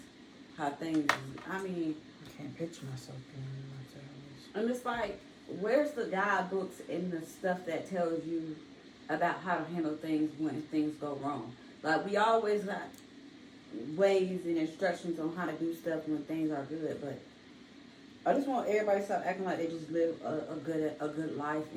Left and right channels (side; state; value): both; identical; correlation 1.00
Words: How things, I mean, I can't picture myself being in my 70s. and it's like, where's the guidebooks and the stuff that tells you about how to handle things when things go wrong? Like, we always got ways and instructions on how to do stuff when things are good, but I just want everybody to stop acting like they just live a good life,